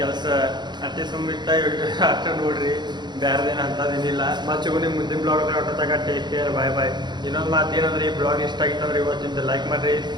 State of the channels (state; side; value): late; left; 0.21 ms